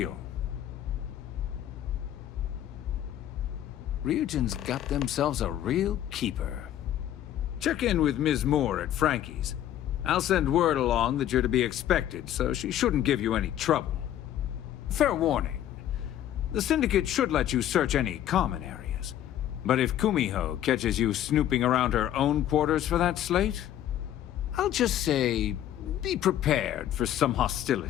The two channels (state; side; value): quieter; right; 11.7 dB